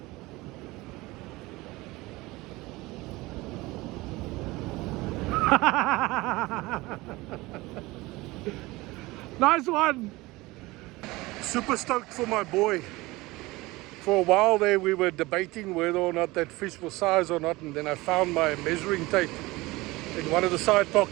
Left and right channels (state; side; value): quieter; left; 21.0 dB